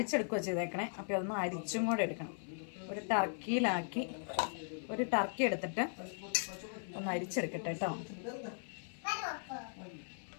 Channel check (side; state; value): right; silent; 52 dB below the other